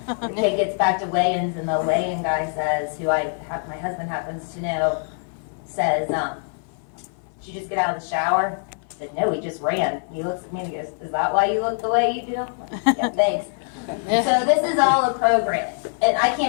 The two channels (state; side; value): silent; right; 56 dB below the other